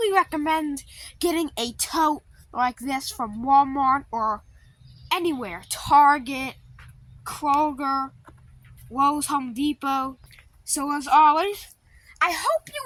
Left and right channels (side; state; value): both; identical; correlation 1.00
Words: recommend getting a tote like this from Walmart or anywhere. Target, Kroger, Lowe's, Home Depot. So as always, I hope